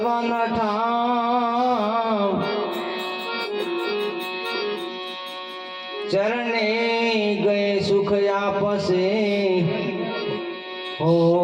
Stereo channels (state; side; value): identical; both; correlation 1.00